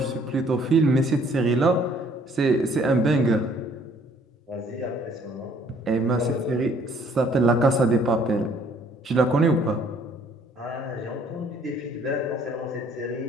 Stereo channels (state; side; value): normal; both; correlation 0.61